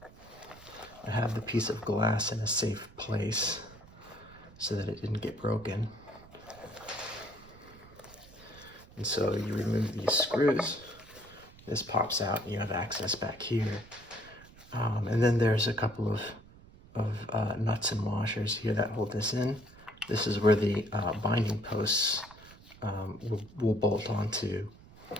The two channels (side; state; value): right; noise; rumble, 22 dB below the sound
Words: I have the piece of glass in a safe place so that it didn't get broken. And so you remove these screws, this pops out and you have access back here. And then there's a couple of nuts and washers here that hold this in. This is where the binding posts will bolt onto.